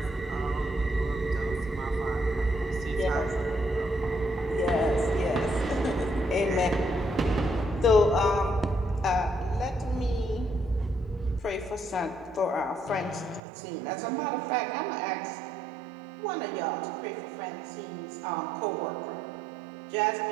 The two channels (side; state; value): left; drops out; at 13.4 s